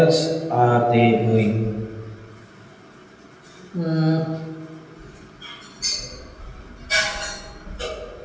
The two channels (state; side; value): identical; both; correlation 1.00